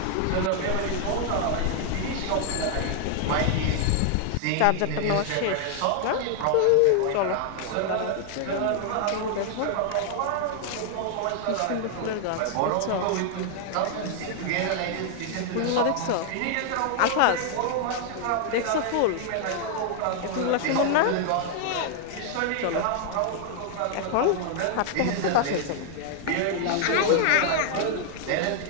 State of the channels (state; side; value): different; both; correlation 0.00